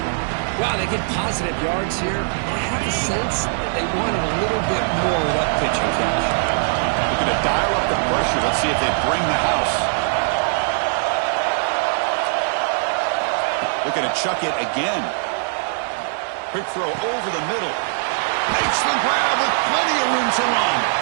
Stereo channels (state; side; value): silent; left; digital silence